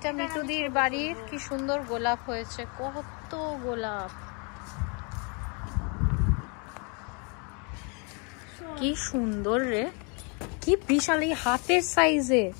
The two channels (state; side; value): quieter; right; 34.7 dB